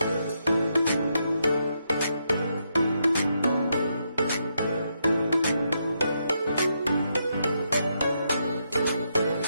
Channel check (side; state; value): both; inverted; correlation -0.80